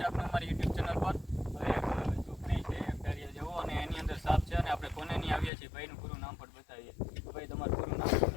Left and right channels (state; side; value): drops out; right; at 5.5 s